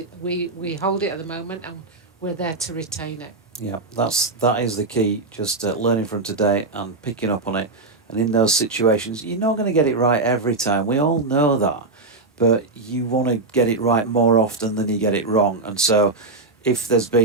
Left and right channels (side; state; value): left; quieter; 3.4 dB